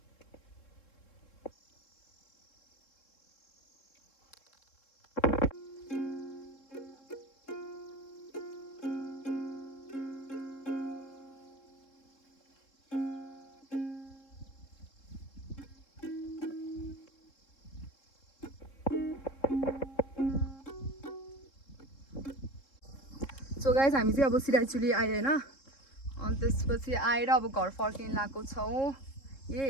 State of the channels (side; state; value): right; late; 3.7 ms